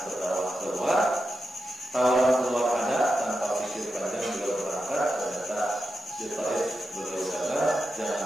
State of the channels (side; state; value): both; normal; correlation 0.89